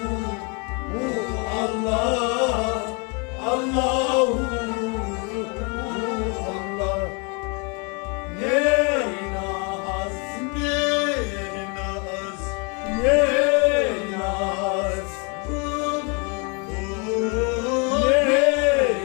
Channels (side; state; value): right; quieter; 33.7 dB